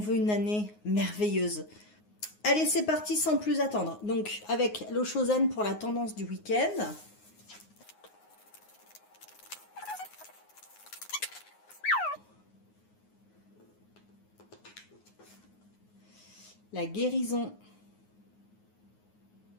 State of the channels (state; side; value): late; right; 9.5 ms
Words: une année merveilleuse. Allez, c'est parti sans plus attendre. Donc, avec l'Osho Zen pour la tendance du week-end. La guérison.